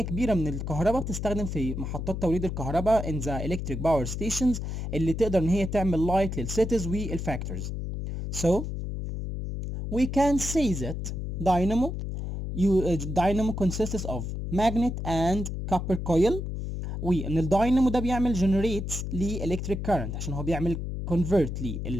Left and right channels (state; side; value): noise; left; hum, 4 dB below the sound